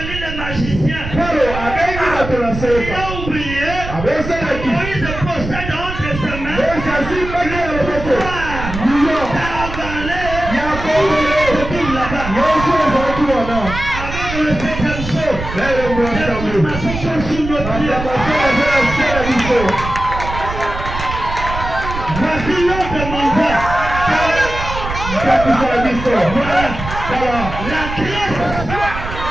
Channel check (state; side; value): noise; right; rumble, 8 dB below the sound